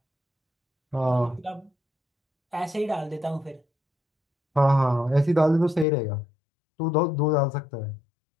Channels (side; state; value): right; drops out; at 5.9 s